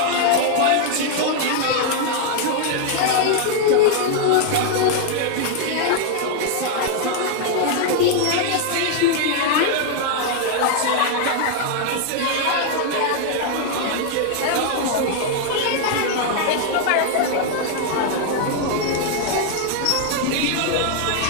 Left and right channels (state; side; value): different; both; correlation 0.00